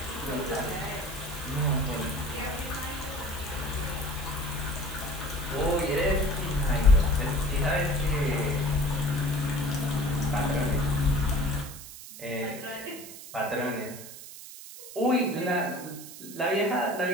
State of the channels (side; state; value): right; noise; hiss, 14 dB below the sound